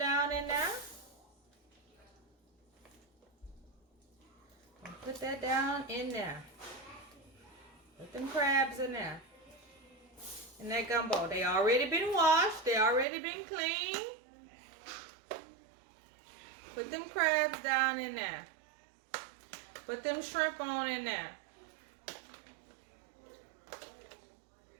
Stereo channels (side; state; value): left; drops out; at 13.1 s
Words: in there. Put that down in there. Put them crabs in there. In that gumbo. They already been washed. They already been cleaned. Put them crabs down in there. Put them shrimp on in there.